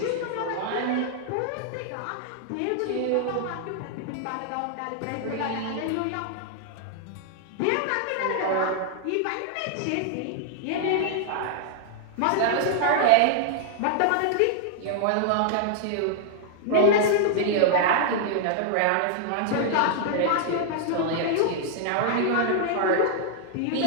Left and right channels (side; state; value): both; different; correlation -0.01